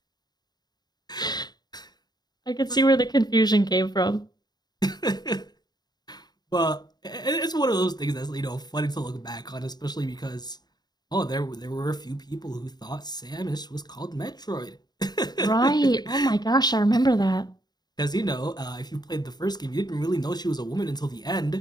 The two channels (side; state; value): right; late; 0.20 ms